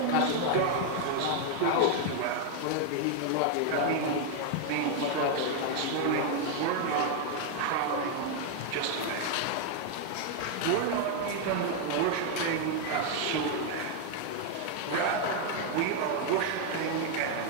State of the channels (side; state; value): both; different; correlation 0.00